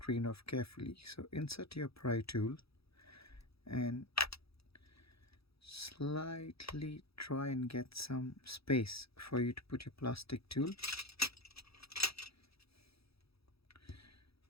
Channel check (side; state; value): right; late; 0.77 ms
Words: off carefully. So insert your pry tool and slightly try and get some space for you to put your plastic tool.